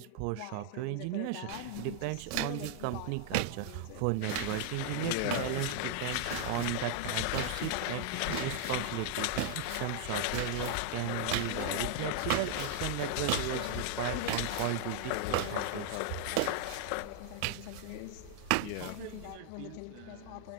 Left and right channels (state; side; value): different; both; correlation 0.00